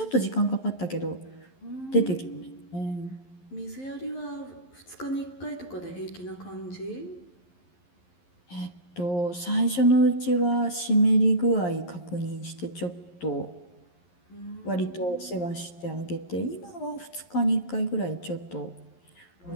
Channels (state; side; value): late; right; 11 ms